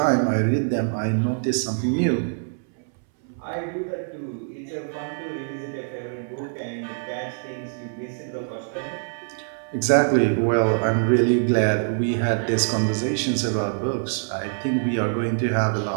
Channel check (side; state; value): left; silent; 62 dB below the other